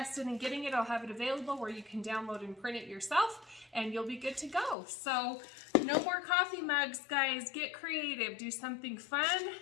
in getting it, I'll have it available where you can download and print it yourself, and you'll be good to go. So no more coffee mugs, guys. Get creative. Do something fun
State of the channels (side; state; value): right; drops out; at 4.8 s